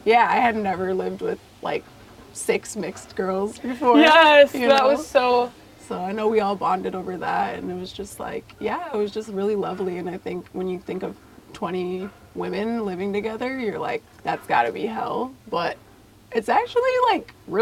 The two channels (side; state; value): both; identical; correlation 1.00